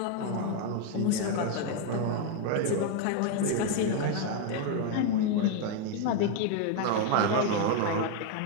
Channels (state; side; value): different; both; correlation 0.01